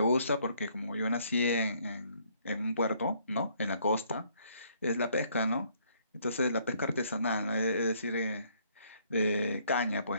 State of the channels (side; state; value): both; inverted; correlation -0.66